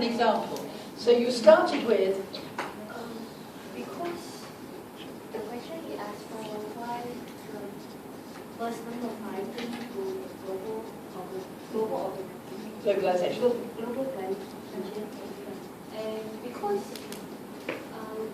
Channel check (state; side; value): identical; both; correlation 1.00